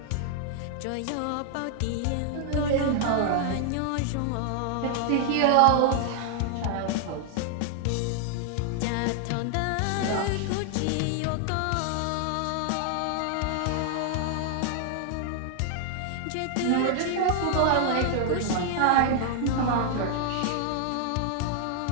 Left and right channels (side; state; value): both; different; correlation 0.00